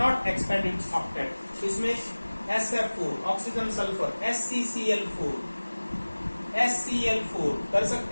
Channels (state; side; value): inverted; both; correlation -1.00